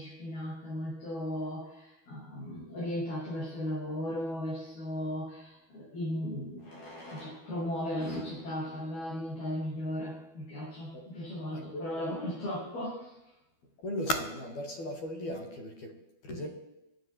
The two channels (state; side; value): late; right; 12 ms